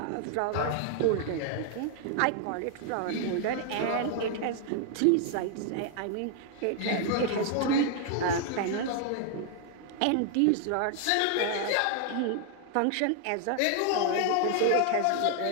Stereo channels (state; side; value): different; both; correlation 0.00